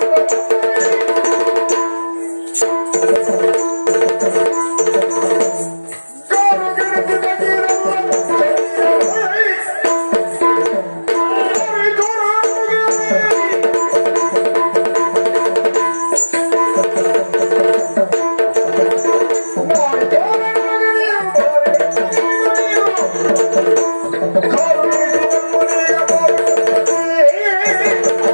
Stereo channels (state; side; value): inverted; both; correlation -1.00